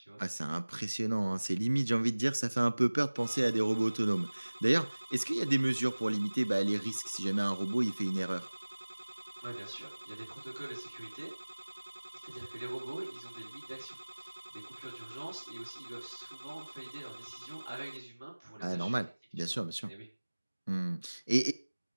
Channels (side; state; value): both; inverted; correlation -1.00